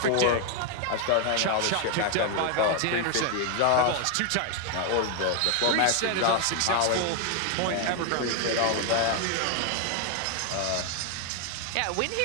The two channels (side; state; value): both; different; correlation 0.00